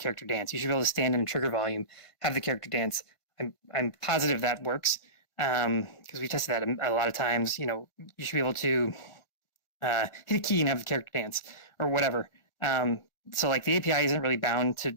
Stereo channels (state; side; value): late; right; 1.4 ms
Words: dance. You should be able to stand in trigger volume, have the character dance. I'm positive that works. because we tested that a lot of times. You know, you should be able to hit a key and have the character dance or whatever. So like the API isn't really bound